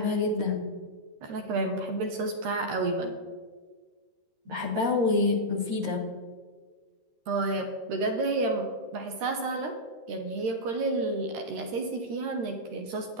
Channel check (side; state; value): left; late; 13 ms